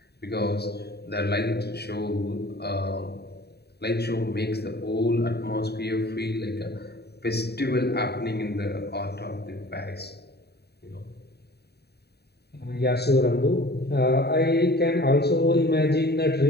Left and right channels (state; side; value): late; right; 0.48 ms